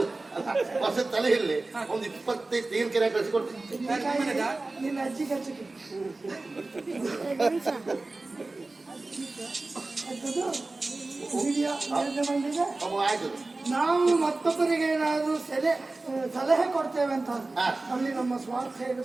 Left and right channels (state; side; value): quieter; left; 3.2 dB